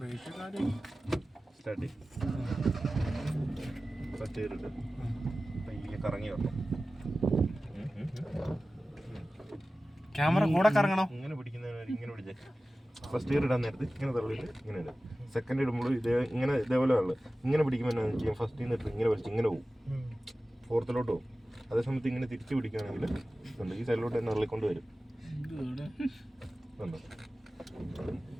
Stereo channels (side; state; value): both; normal; correlation 0.96